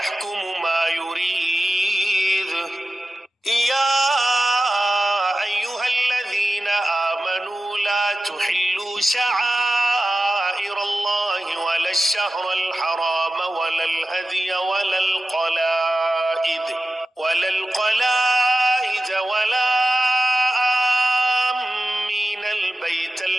ما يريد يا أيها الذين آمنوا لا تحلوا شعائر الله ولا الشهر الحرام ولا الهدي ولا القلائد ولا آمين البيت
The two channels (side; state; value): both; normal; correlation 0.94